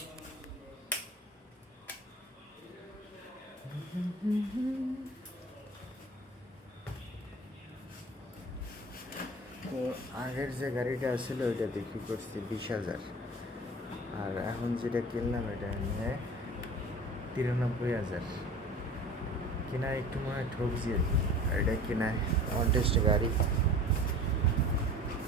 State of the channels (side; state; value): both; normal; correlation 0.41